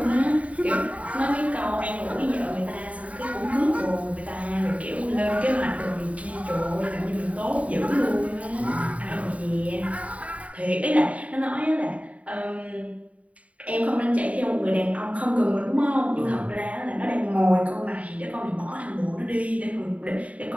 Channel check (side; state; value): left; late; 0.067 ms